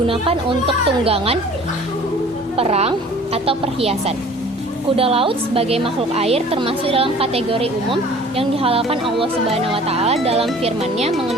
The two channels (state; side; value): normal; both; correlation 0.48